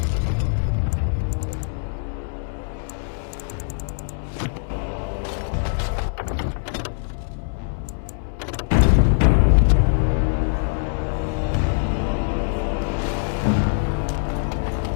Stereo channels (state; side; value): silent; right; 64 dB below the other